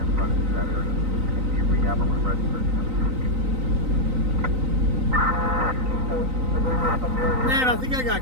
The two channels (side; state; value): left; late; 3.9 ms